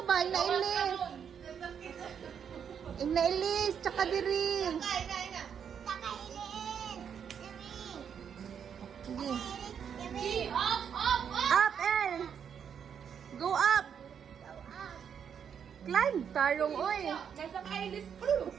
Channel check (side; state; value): left; quieter; 7.7 dB